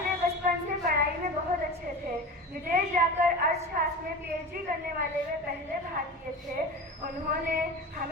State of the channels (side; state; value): both; normal; correlation 0.31